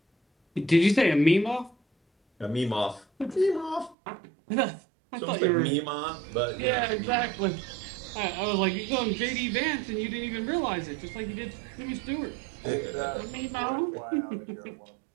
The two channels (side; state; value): left; drops out; at 4.0 s